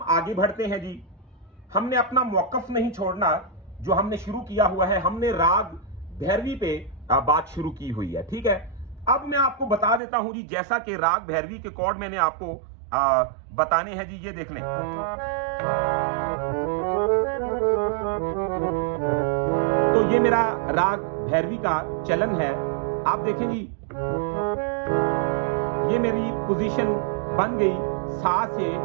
आगे बढ़ते हैं जी, हमने अपना मौकफ नहीं छोड़ना, जो हमने शुरू किया हुआ है, हमने राग भैरवी पे बात शुरू की हुई है, ठीक है। अब मैं आपको बता देता हूं जी, जैसा कि राग भैरवी के कॉर्ड मैंने आपको बताने हैं जी, ये देख लें। तो ये मेरा राग भैरवी का चलन है, आप देखें जी, ये मेरी पोजीशन बन गई, सा से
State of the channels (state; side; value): drops out; left; at 10.0 s